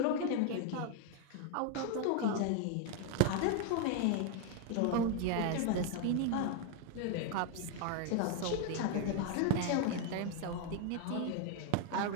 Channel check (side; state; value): both; different; correlation 0.00